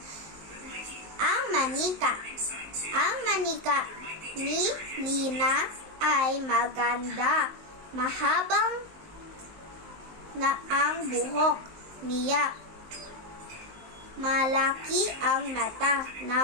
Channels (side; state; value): left; late; 19 ms